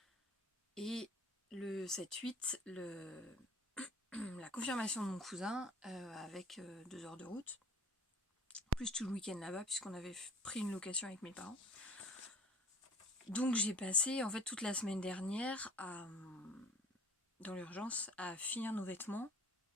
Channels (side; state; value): both; normal; correlation 0.50